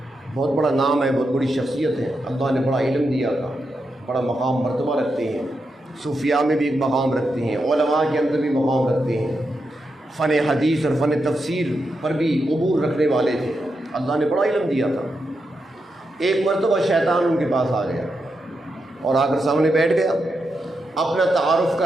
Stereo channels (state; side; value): normal; both; correlation 0.85